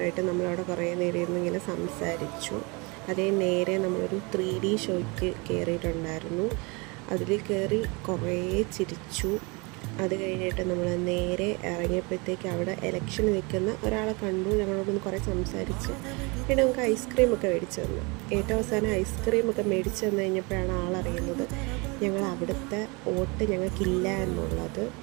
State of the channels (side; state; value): left; quieter; 28.2 dB